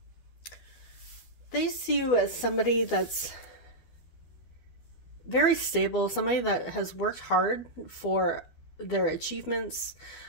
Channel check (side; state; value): right; late; 12 ms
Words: they see you as somebody that's very stable, somebody that has worked hard for their achievements,